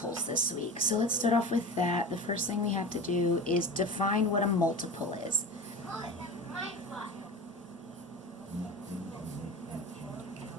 this week. So let's start off with that. The first thing we have to do is define what a multiple is.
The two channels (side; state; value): both; normal; correlation 0.30